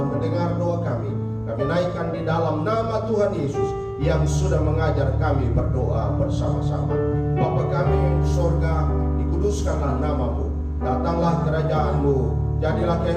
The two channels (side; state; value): both; identical; correlation 1.00